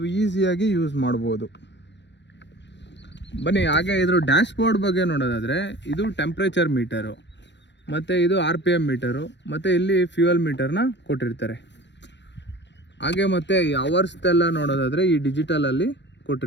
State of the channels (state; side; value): late; right; 0.52 ms